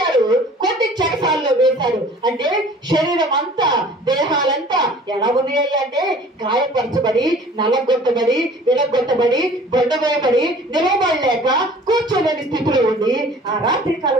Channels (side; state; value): both; normal; correlation 0.48